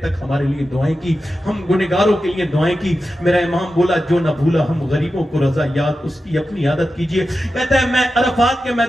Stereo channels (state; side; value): normal; both; correlation 0.91